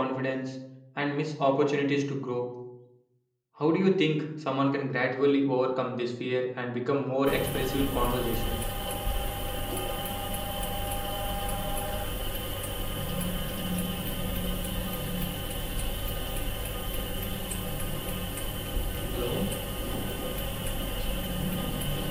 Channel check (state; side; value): identical; both; correlation 1.00